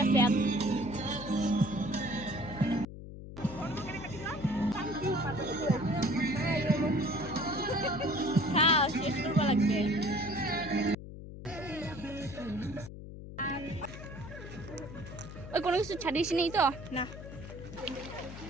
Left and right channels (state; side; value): noise; left; hum, 12 dB below the sound